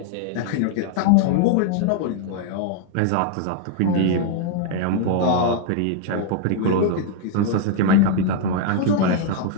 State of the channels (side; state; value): both; different; correlation 0.00